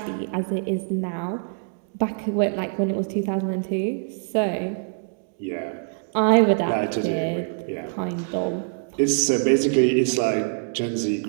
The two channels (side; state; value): left; silent; digital silence